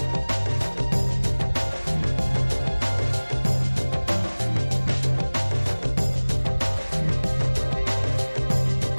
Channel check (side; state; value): both; inverted; correlation -1.00